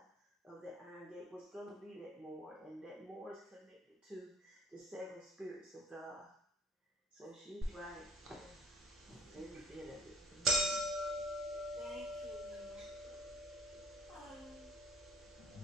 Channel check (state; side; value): normal; both; correlation 0.57